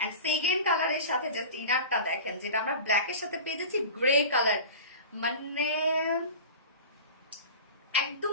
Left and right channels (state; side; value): inverted; both; correlation -0.34